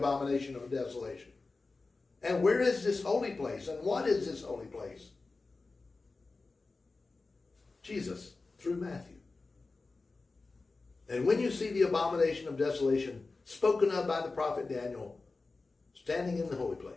of desolation? And where is this holy place? And what is this holy place? Jesus, through Matthew. And when you see the abomination of desolation spoken of by the prophet Daniel standing in the holy place.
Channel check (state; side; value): quieter; right; 3.7 dB